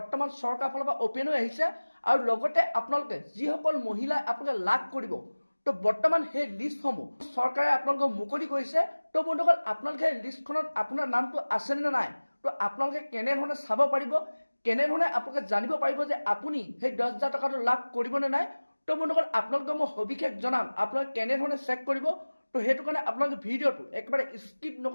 চৰকাৰৰ ফালৰ পৰা অপেন হৈ আহিছে আৰু লগতে আপোনালোকে যিসকল মহিলাই আপোনালোকে লাভ কৰিব, তো বৰ্তমান সেই লিষ্টসমূহ চৰকাৰে আপোনালোকক মুকলি কৰিছে। তো বন্ধুসকল আপোনালোকে সেই লিষ্টখনত আপোনাৰ নামটো আছেনে নে নাই, তো আপোনালোকে কেনেধৰণে চাব পাৰিব, কেনেধৰণে আপোনালোকে জানিব পাৰিব যে আপুনি সেই 10,000 টকাটো লাভ কৰিবনে নাই। তো বন্ধুসকল আপোনালোকে মই সবিশেষ জনাম আপোনালোকে কেনেধৰণে চেক কৰিব। তো সেইটো কাৰণে আপোনালোকে ভিডিঅ'টো একেবাৰে স্কিপ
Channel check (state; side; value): inverted; both; correlation -1.00